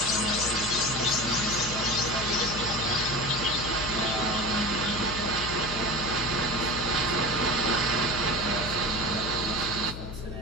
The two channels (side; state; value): left; noise; hum, 9 dB below the sound